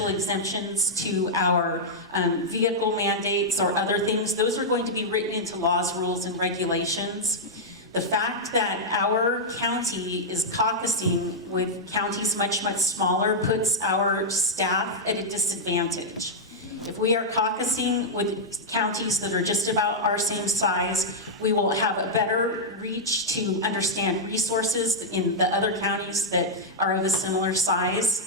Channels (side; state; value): both; normal; correlation -0.06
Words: exemptions to our vehicle mandates or other things. Those are going to be written into laws, rules, and regulations. The fact that our county is caucusing with counties much, much smaller puts our staff at a disadvantage. If we are caucusing with counties that are just about our same size, we will have a better reach to understand resources in the other counties that are of a similar